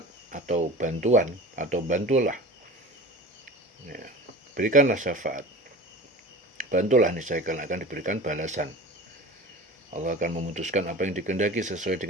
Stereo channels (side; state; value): both; normal; correlation 0.36